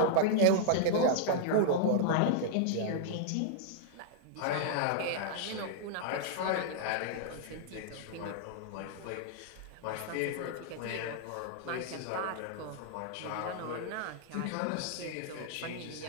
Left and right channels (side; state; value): both; different; correlation -0.01